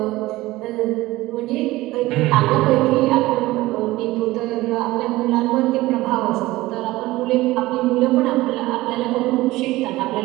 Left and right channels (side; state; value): left; quieter; 18.3 dB